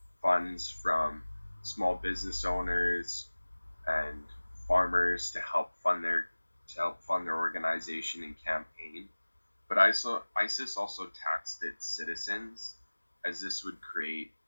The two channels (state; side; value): inverted; both; correlation -1.00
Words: funds from small business owners and farmers to help fund their organization and campaign. But ISIS also taxed its citizens, as this would create